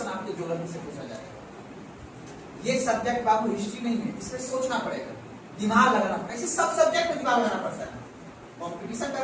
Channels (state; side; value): identical; both; correlation 1.00